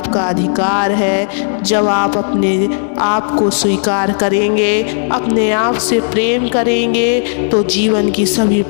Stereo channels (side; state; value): right; silent; digital silence